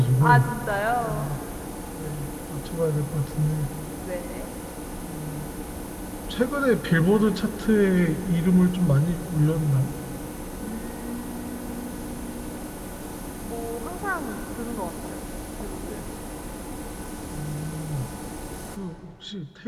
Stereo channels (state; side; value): identical; both; correlation 1.00